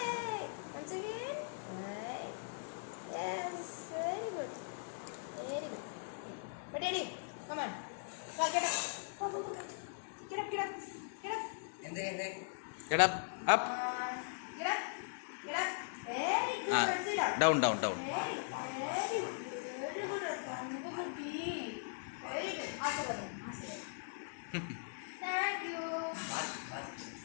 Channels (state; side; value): silent; right; digital silence